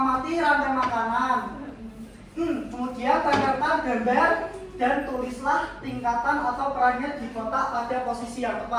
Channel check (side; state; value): both; identical; correlation 1.00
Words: rantai makanan. Kemudian tempelkan gambar dan tulislah tingkatan atau perannya di kotak pada posisi yang